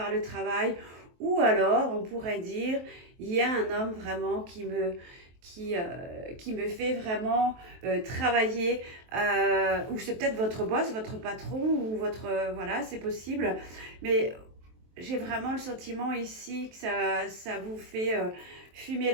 le travail, Ou alors, on pourrait dire, il y a un homme vraiment qui me fait vraiment travailler, ou c'est peut-être votre boss, votre patron, ou votre... voilà, c'est possible. Mais j'ai vraiment le sentiment ici que ça vous fait fumer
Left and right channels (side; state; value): left; late; 23 ms